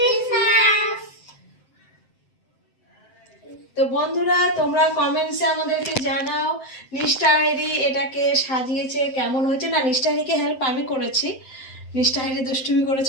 তো বন্ধুরা, তোমরা কমেন্টসে আমাদেরকে জানাও নিষ্ঠাহেরি এটাকে সাজিয়েছে কেমন হয়েছে। না, নিষ্ঠাহেরিকে হেল্প আমি করেছি, নিষ্ঠাহেরি দুষ্টুমি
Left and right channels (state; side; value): late; right; 7.7 ms